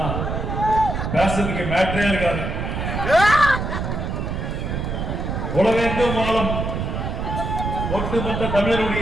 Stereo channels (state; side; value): noise; right; rumble, 3 dB below the sound